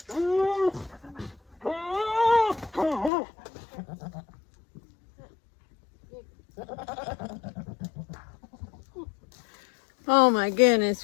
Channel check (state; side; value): drops out; right; at 3.1 s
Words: Oh my goodness,